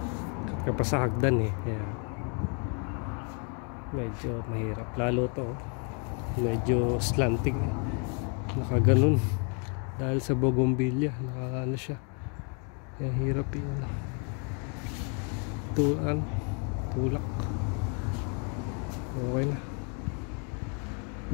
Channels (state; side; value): quieter; right; 38.6 dB